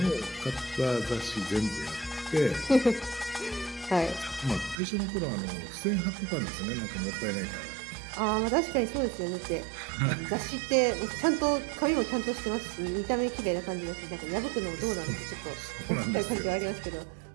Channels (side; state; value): left; drops out; at 4.8 s